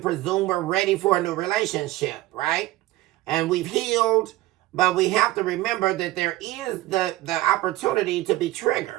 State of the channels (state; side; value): quieter; left; 17.0 dB